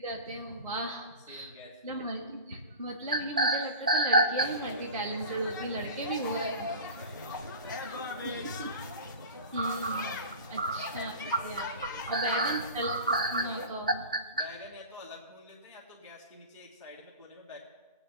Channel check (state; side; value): inverted; both; correlation -0.35